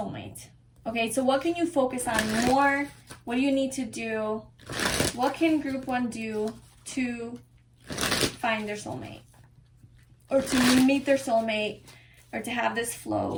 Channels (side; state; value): both; identical; correlation 1.00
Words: Okay, so what can you focus on more? What do you need to do? What can group 1 do to find their soulmate? Or to meet their soulmate? Or to have this